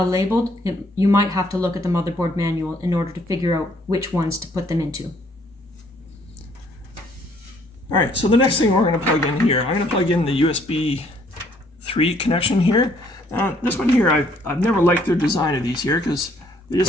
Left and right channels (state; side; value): normal; both; correlation 0.64